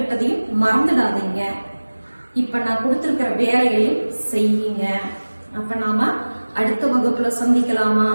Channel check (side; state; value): both; inverted; correlation -1.00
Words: மறந்துடாதீங்க. இப்ப நான் கொடுத்திருக்கிற வேலைகளையும் செய்யுங்க. அப்ப நாம அடுத்த வகுப்புல சந்திக்கலாமா?